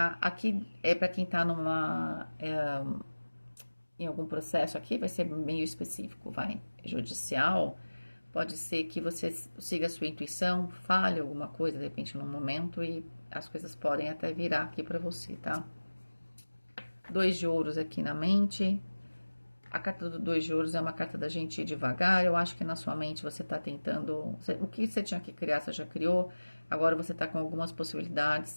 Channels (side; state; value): both; inverted; correlation -1.00